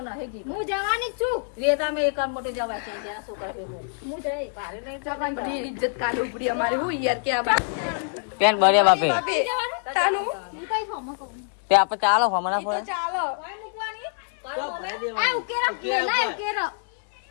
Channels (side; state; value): right; silent; digital silence